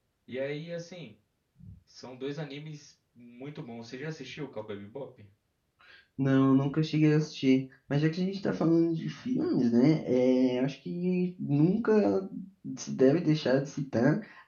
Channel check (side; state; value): both; identical; correlation 1.00